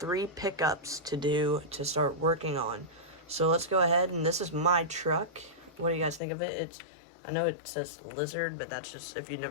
pickups to do to start working on. So let's go ahead, and this is my truck. What do you guys think of it? I know it says Lizard, but that's just, if you've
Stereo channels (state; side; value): drops out; right; at 6.2 s